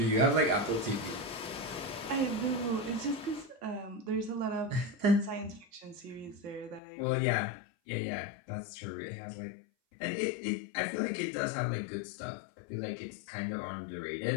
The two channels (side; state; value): right; drops out; at 6.8 s